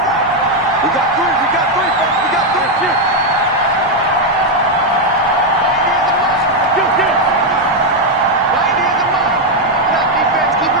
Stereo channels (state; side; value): normal; both; correlation 0.02